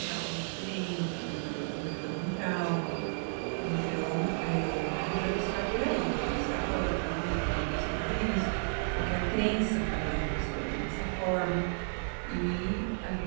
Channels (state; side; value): silent; left; 56 dB below the other